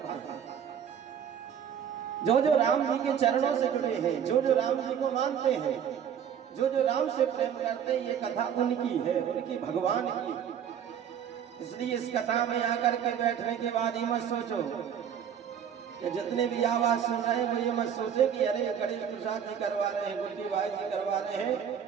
हैं, जो राम जी के चरणों से जुड़े हैं, जो राम जी को मानते हैं, जो राम से प्रेम करते हैं। ये कथा उनकी है, उनकी भगवान की। इसलिए इस कथा में आकर के बैठने के बाद ये मत सोचो कि जितने भी आवाज सुन रहे हैं वो ये मत सोचे कि अरे गणेश प्रसाद जी करवा रहे हैं, गुड्डीबाई जी करवा रहे हैं,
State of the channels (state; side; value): quieter; left; 8.6 dB